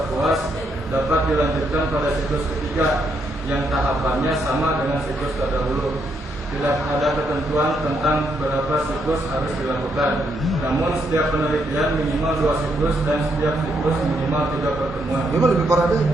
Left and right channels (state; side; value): normal; both; correlation 0.76